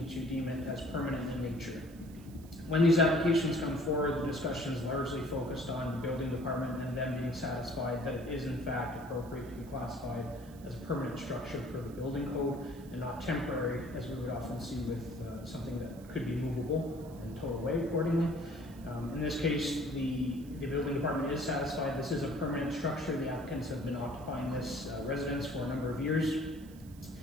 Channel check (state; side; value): noise; right; hiss, 24 dB below the sound